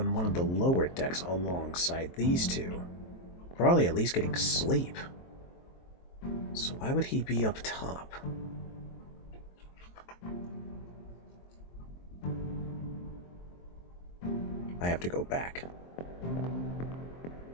one of the lower decks alongside these two. Probably at least getting sleep. So why would he be up top? I have to go back.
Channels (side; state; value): right; late; 23 ms